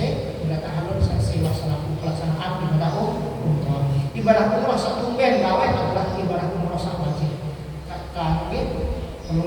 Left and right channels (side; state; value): both; identical; correlation 1.00